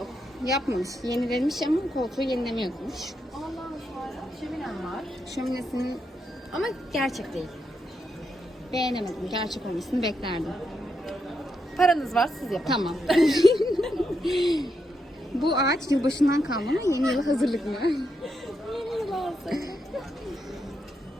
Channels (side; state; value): both; normal; correlation 0.82